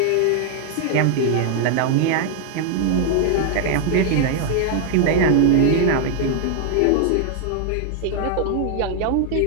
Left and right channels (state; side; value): different; both; correlation 0.00